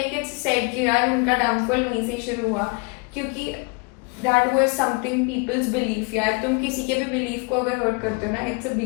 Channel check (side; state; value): right; quieter; 31.1 dB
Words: इट्स सेड कि यार उनका डाउनफॉल वहीं से शुरू हुआ, क्योंकि that was something people's belief. यार तुम किसी के भी बिलीफ को अगर हर्ट करते हो ना, इट्स अ